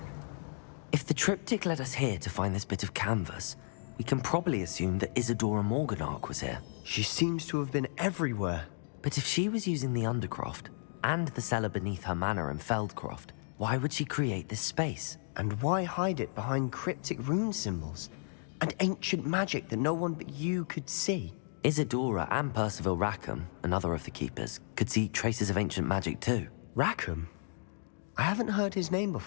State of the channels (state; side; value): silent; right; digital silence